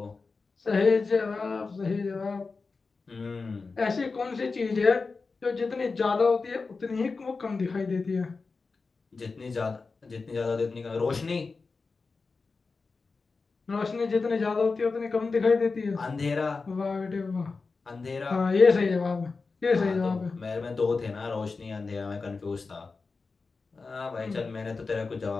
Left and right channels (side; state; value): right; quieter; 4.3 dB